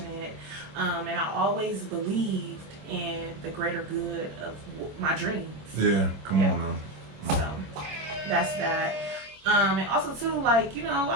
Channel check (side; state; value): left; late; 25 ms